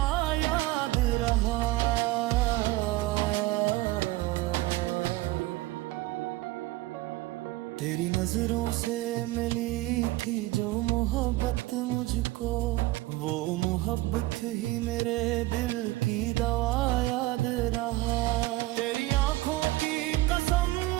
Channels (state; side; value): quieter; left; 18.7 dB